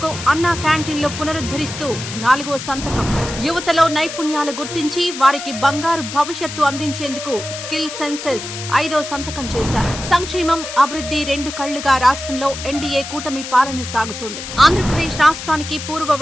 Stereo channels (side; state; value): left; noise; hiss, 9 dB below the sound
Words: అన్నా క్యాంటీన్లు పునరుద్ధరిస్తూ నాలుగో సంతకం. యువతలో నైపుణ్యాలు గుర్తించి వారికి బంగారు భవిష్యత్తు అందించేందుకు స్కిల్ సెన్సెస్ ఐదో సంతకం చేశారు. సంక్షేమం, అభివృద్ధి రెండు కళ్లుగా రాష్ట్రంలో ఎన్డీఏ కూటమి పాలన సాగుతోంది. ఆంధ్రప్రదేశ్ రాష్ట్రానికి పూర్వ